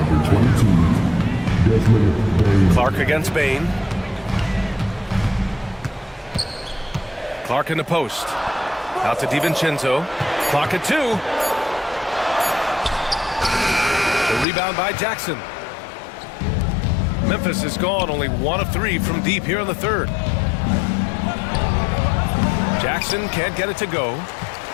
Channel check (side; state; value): right; drops out; at 14.5 s